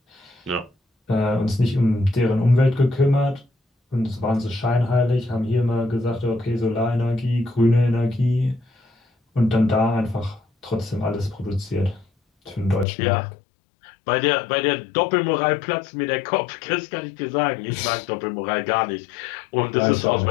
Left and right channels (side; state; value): right; drops out; at 12.9 s